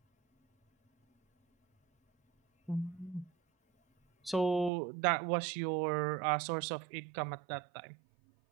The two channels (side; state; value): left; drops out; at 4.7 s